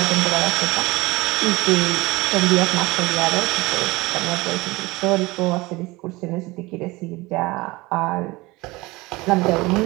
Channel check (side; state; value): left; quieter; 22.0 dB